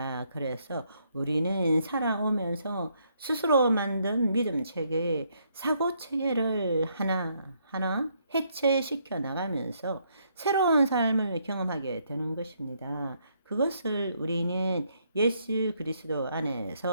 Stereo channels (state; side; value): inverted; both; correlation -0.72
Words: 그래서 우리는 살아오면서 스스로 만든 믿음 체계, 사고 체계를 하나하나 해체시켜 나가면서 새로운 삶을 경험하게 되는 것입니다. 그것을 우리는 예수 그리스도